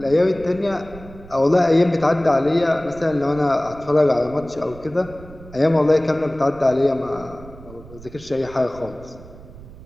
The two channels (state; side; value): noise; right; rumble, 18 dB below the sound